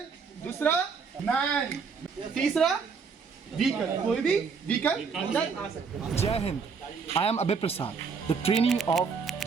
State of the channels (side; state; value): left; quieter; 5.5 dB